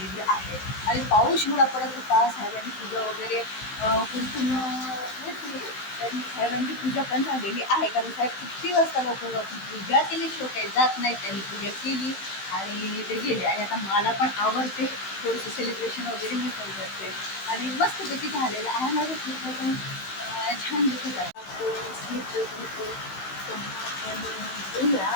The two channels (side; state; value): right; late; 16 ms